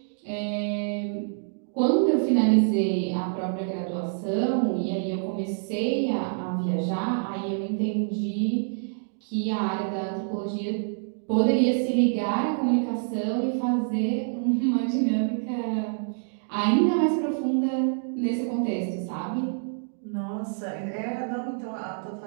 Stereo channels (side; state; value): left; silent; digital silence